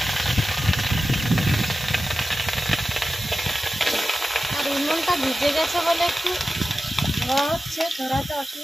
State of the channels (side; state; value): both; normal; correlation 0.94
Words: আর উনুনটা ভিজে গেছে বলে একটু ধোয়া হচ্ছে, ধরাতে